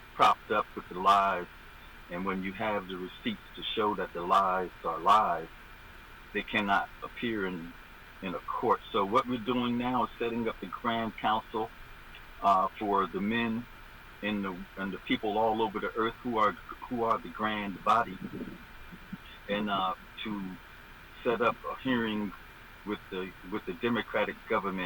propped up with the lies. And when you have the receipts to show that the lies are lies, they cannot appear in a court. So what we're doing now is setting up the Grand Council for the men and the people all over the earth who are the grand body, and to set up a hearing with the Democratic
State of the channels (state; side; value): identical; both; correlation 1.00